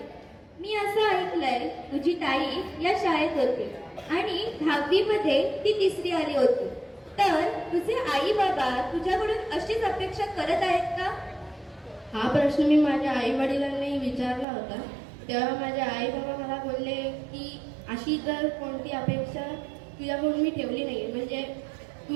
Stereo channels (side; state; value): left; drops out; at 14.5 s